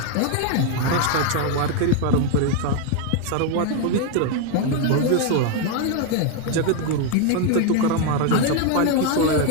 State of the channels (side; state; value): both; different; correlation 0.01